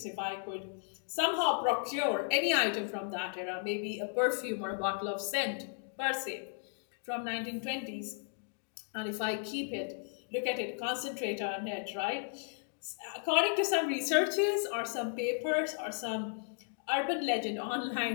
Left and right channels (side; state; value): right; silent; 55 dB below the other